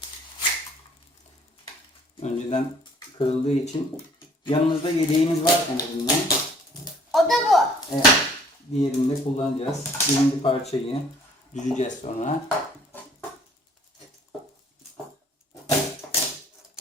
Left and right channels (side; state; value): both; normal; correlation 0.57